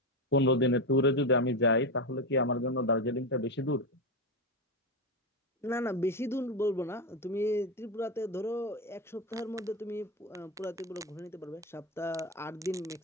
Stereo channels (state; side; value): normal; both; correlation 0.13